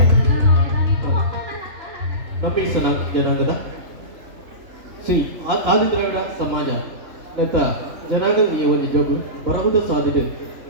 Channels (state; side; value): late; left; 3.4 ms